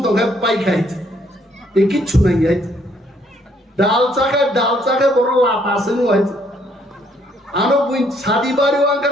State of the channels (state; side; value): normal; both; correlation 0.68